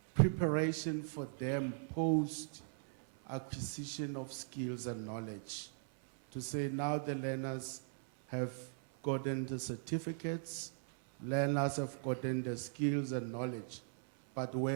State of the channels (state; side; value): silent; left; 52 dB below the other